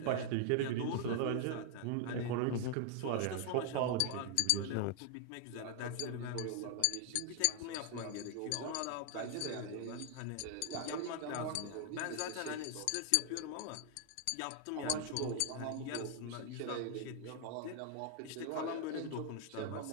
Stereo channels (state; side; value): different; both; correlation 0.00